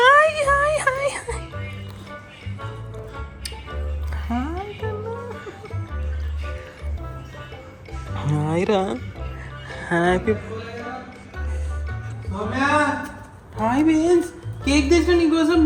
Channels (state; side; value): identical; both; correlation 1.00